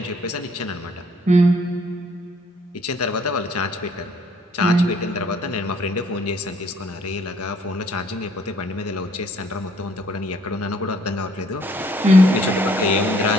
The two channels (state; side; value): normal; both; correlation 0.63